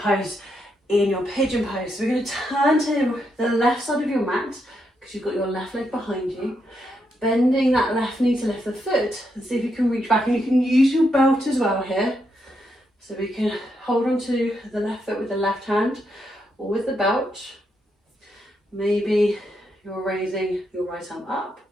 in your pigeon pose. So we're going to turn to the left side of your mat, because you've got your left leg behind you, bending that left knee to lift the foot, and see if you can reach back. And you can use your belt as well here, so we can hold on to the left foot with the left hand or with the belt. Maybe you're raising your right arm up,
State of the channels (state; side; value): normal; both; correlation 0.81